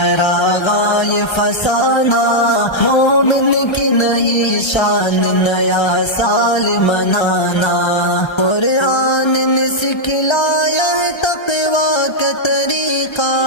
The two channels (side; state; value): right; late; 1.3 ms